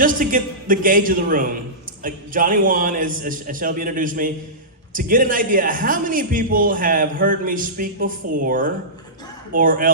to get the gauge of the room, Johnny Juan, as Shelby introduced me, to get an idea, how many people have heard me speak before, or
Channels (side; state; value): both; normal; correlation -0.19